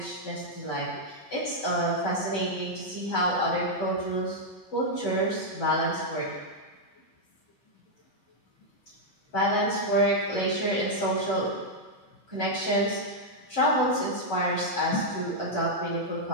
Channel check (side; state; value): right; late; 11 ms